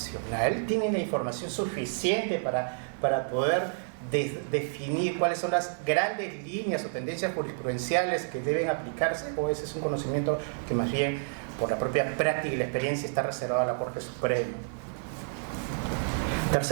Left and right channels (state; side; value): silent; left; 57 dB below the other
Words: ¿Tienen la información suficiente para poder definir cuáles son las grandes líneas o tendencias jurisprudenciales que deben aplicarse? ¿O ese es un conocimiento que más bien, por la propia práctica y la experiencia, está reservado a la Corte Suprema?